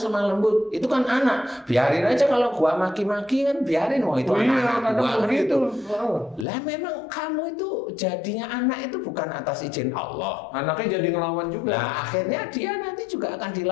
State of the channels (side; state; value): right; drops out; at 6.5 s